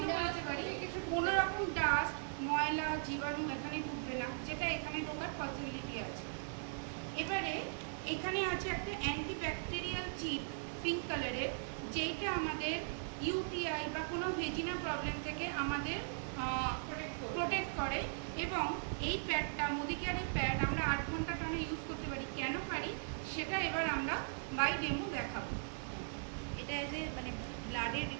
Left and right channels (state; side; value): silent; left; digital silence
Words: করে দিতে পারি। কোনো রকম ডাস্ট, ময়লা, জীবাণু এখানে ঢুকবে না, যেটা এখানে ঢোকার পসিবিলিটি আছে। এবারে এখানে আছে একটা অ্যান্টিব্যাকটেরিয়াল চিপ পিঙ্ক কালারের, যেইটা আমাদের ইউটিআই বা কোনো ভেজিনা প্রবলেম থেকে আমাদের প্রোটেক্ট করে। এবং এই প্যাডটা, মোদি কেয়ারের প্যাড, আমরা 8 ঘন্টা টানা ইউজ করতে পারি। কেন পারি সেটা এবার আমরা বাই ডেমো দেখাবো। এটা যে মানে ব্লাডের